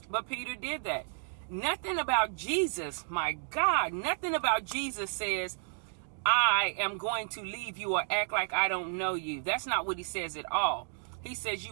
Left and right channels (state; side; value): silent; left; 56 dB below the other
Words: But Peter did that. Nothing about Jesus, my God, nothing about Jesus says, I am going to leave you or act like I don't know you. That's not what he says at all. He says